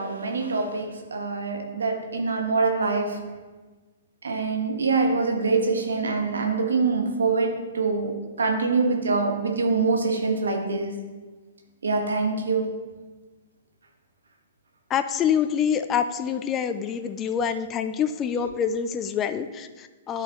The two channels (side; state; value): both; inverted; correlation -0.34